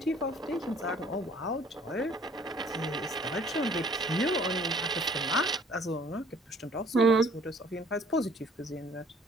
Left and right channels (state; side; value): normal; both; correlation 0.56